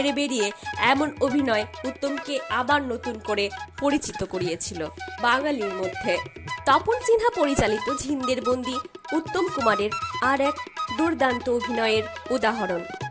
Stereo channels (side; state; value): both; identical; correlation 1.00